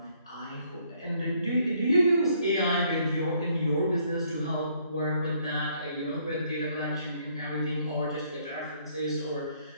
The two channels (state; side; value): inverted; both; correlation -0.67